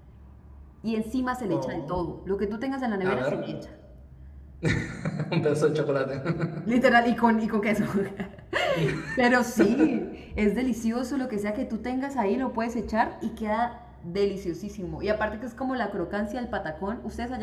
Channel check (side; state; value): both; identical; correlation 1.00